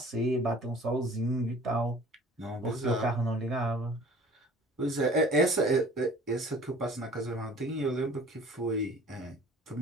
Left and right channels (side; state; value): both; normal; correlation 0.48